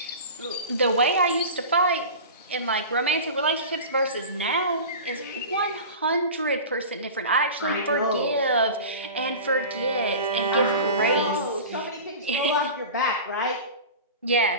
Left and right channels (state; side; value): inverted; both; correlation -0.33